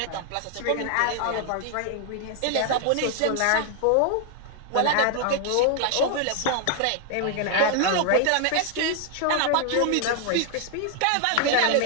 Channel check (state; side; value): different; both; correlation 0.00